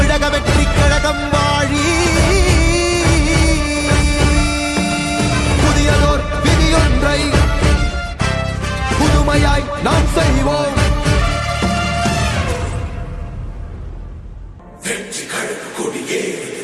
வெற்றி கழகம் வாழி. புதியதோர் விதியொன்றை புதுமையாய் நாம் செய்வோம். வெற்றி கழக கொடியே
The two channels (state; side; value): identical; both; correlation 1.00